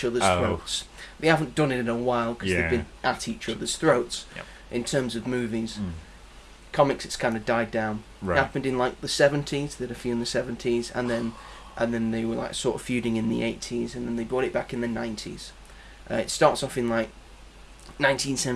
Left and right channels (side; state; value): both; identical; correlation 1.00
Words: other's throats. They haven't done it in a while because they've been at each other's throats. Yep. In terms of movies, comics, it's kind of died down. Right. It happened in like the 70s. They did a few in the 70s, and then they were like sort of feuding in the 80s, and then they brought it back in the 90s. It starts off in like